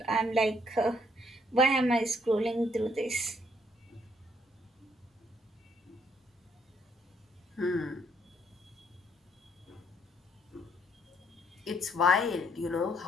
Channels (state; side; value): normal; both; correlation 0.69